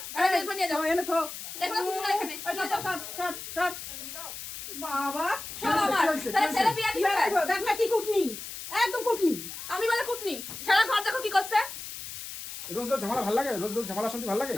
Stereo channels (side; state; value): left; noise; hiss, 9 dB below the sound